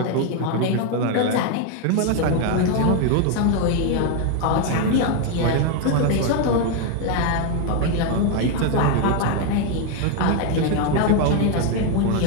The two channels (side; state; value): both; different; correlation 0.01